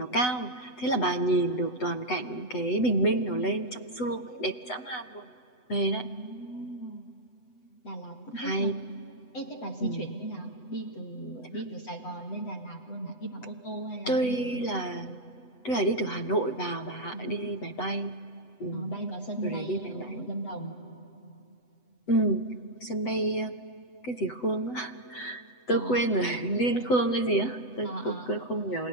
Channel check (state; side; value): late; right; 8.0 ms